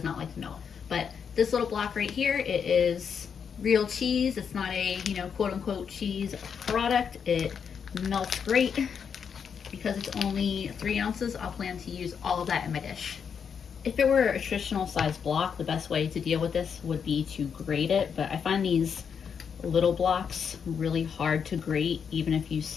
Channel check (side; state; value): right; quieter; 6.9 dB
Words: not like to melt. But this little block right here, it is real cheese. It's not a, quote unquote cheese product. It melts great. Because it's only 3 ounces, I'll plan to use all of that in my dish. If it were a traditional size block, the best way to deal with this would be to grate it, but I find these little blocks really hard to grate even if you